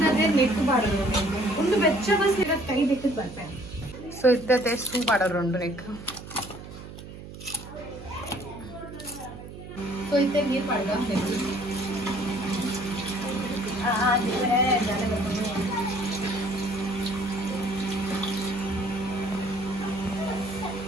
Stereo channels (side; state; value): right; noise; hum, 13 dB below the sound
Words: ನೆಕ್ ಬಾಡೋದು ಒಂದು ಬೆಚ್ಚ ಬಸ್ ಇರೋದು ಕೈ ಬೆಕ್ಕದ ಬರ್ಪೇನೆ ಸೊ ಇದ್ದತೆ ಸೂ ಬಾಡೋರು ನೆಕ್ ಸೊ ಇತ್ತೆ ನೀರು ಪಡ್ಗ